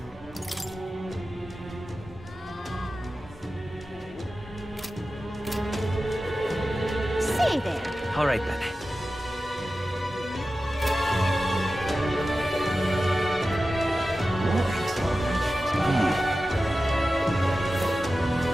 Say there. All right then.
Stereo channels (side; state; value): both; normal; correlation 0.94